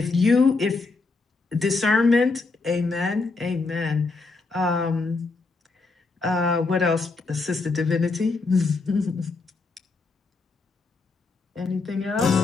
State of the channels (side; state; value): right; quieter; 3.9 dB